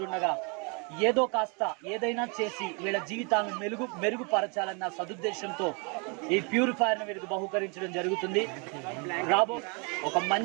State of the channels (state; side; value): quieter; left; 33.9 dB